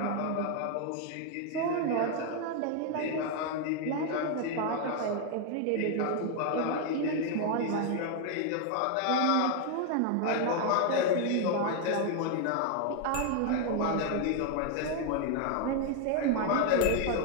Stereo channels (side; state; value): both; different; correlation 0.00